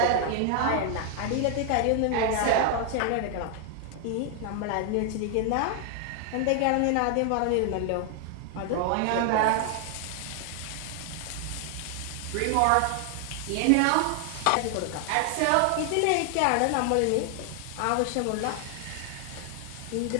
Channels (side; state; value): both; different; correlation 0.00